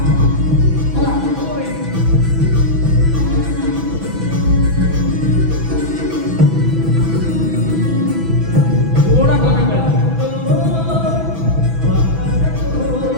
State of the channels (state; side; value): late; left; 6.1 ms